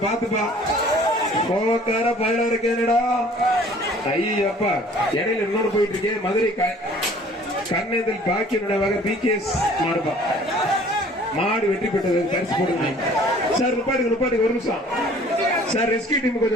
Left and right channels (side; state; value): both; normal; correlation 0.52